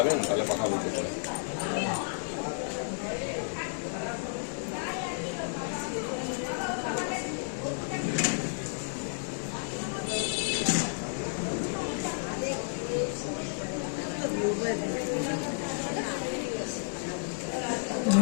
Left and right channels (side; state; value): right; silent; digital silence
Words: তাহলে কথা বলতে পারেন।